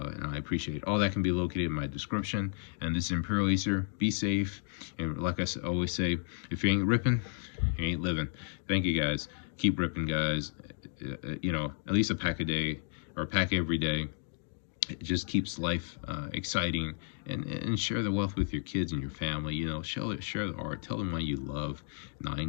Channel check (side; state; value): right; silent; digital silence